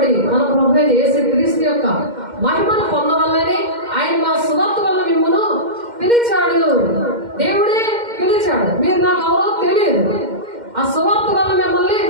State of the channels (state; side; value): late; left; 2.1 ms